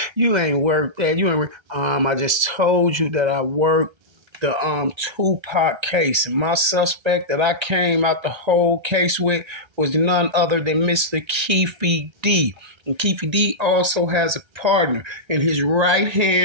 you ain't worked that. You ain't I just told you that I worked the Tupac case, and my suspect that I came out the whole case with was none other than Mr. Keefe D. And Keefe D also has a partner, and his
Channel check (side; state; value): left; late; 1.3 ms